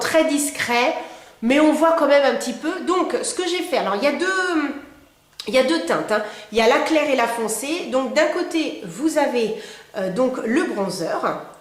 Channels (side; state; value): both; identical; correlation 1.00